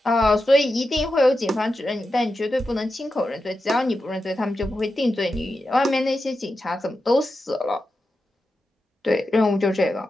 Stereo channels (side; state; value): both; normal; correlation 0.90